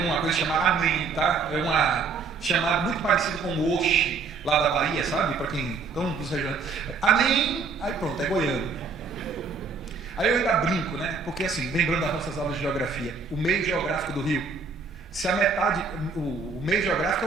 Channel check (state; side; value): quieter; left; 4.7 dB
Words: uma coisa chamada amém, tá? É uma chamada muito parecida com o oxe, lá da Bahia, sabe? Para quem estão dos regiões. Amém, aí pronto, é goiano. Aí eu ainda brinco, né? Porque assim, lembrando das nossas aulas de geografia, o meio geográfico do Rio, se a metade, o meio geográfico